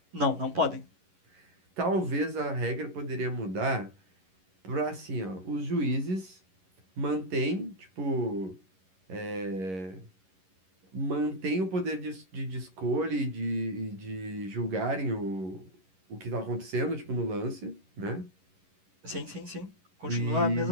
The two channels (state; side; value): late; left; 11 ms